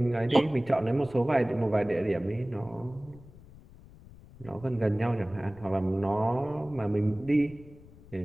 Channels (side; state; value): left; noise; rumble, 21 dB below the sound